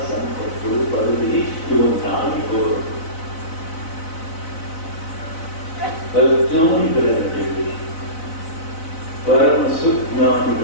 ಸಂಪತ್ತು ಪದವಿ ಇವು ನಾಯಿಕೋರು. ಅಜ್ಞಾನಿಗಳ ನಡುವೆ, ಪರಮ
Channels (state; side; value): late; right; 4.0 ms